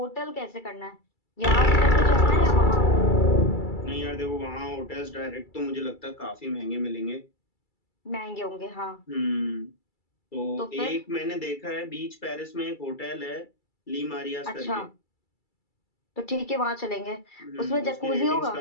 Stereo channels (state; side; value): late; right; 2.3 ms